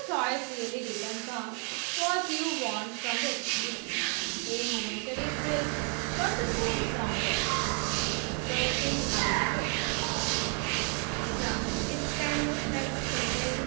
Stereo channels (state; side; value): quieter; left; 39.4 dB